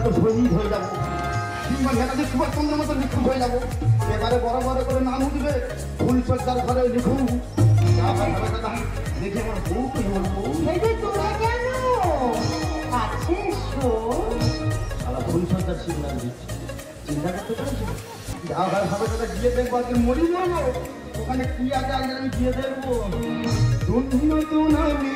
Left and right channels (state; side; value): identical; both; correlation 1.00